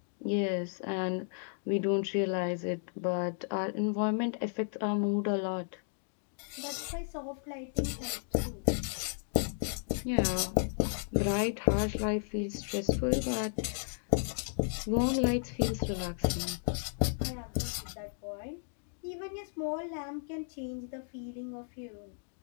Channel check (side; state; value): right; silent; digital silence